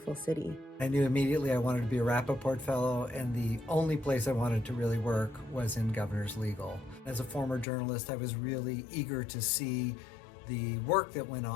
city. I knew immediately I wanted to be a Rappaport Fellow, and the only place I wanted to really work was in Governor's Legal. As a former journalist, I was really eager to see the work that went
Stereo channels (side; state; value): right; drops out; at 7.7 s